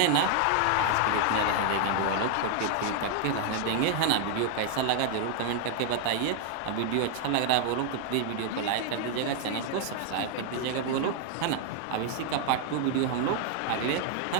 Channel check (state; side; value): different; both; correlation 0.00